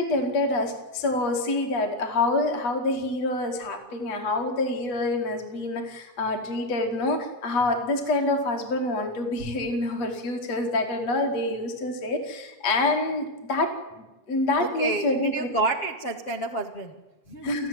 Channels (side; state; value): right; late; 8.2 ms